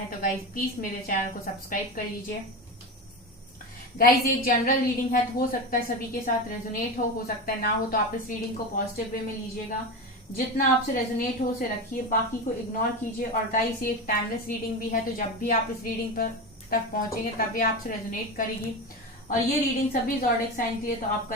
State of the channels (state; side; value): normal; both; correlation 0.22